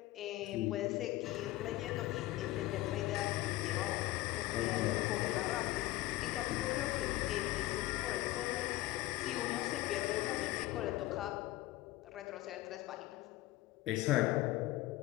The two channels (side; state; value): right; quieter; 17.1 dB